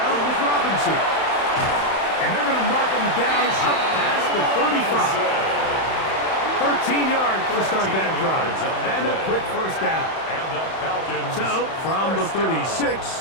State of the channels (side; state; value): right; late; 31 ms